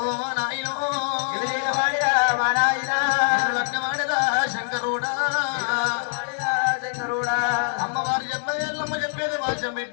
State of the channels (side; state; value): right; silent; digital silence